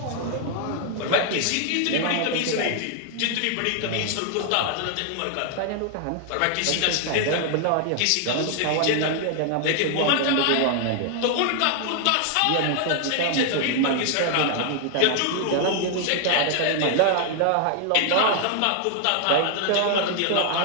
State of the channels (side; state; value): both; different; correlation 0.00